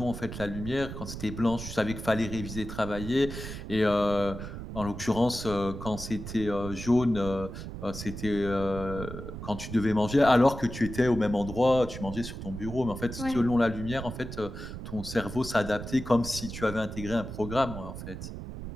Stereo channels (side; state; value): right; noise; rumble, 9 dB below the sound